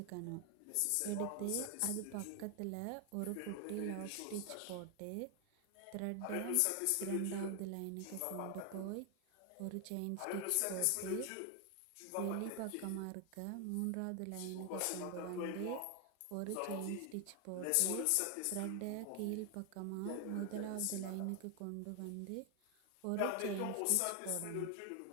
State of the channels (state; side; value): different; both; correlation 0.00